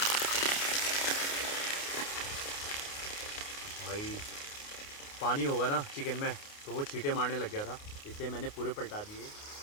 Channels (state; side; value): late; right; 29 ms